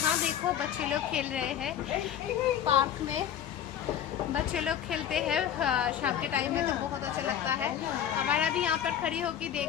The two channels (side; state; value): right; quieter; 9.8 dB